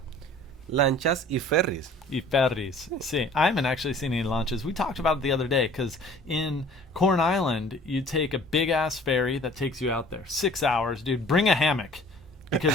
Lanchas y ferries. y ferries. See, I haven't actually seen any lanchas. We talked about it the other day because in Corn Island, you take a big ass ferry that takes you out there. 6 hours, dude. Bring a hammock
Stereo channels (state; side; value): normal; both; correlation 0.50